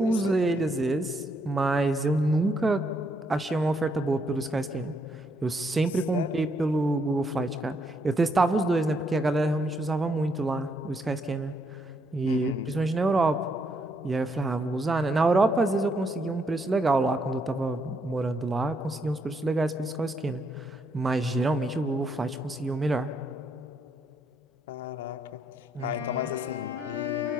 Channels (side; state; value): both; normal; correlation 0.74